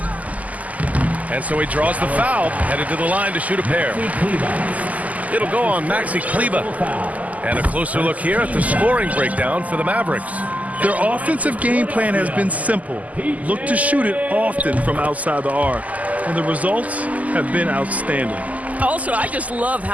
And so he draws the foul, headed to the line to shoot a pair. It'll go on Maxey Kleba. And a closer look here at the scoring breakdown for the Mavericks. Their offensive game plan has been simple. Look to shoot it often from outside the arc. And the results have been outstanding. Also, I just love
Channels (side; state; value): left; late; 0.075 ms